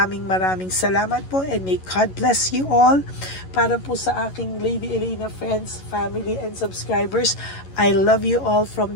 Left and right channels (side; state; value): right; late; 11 ms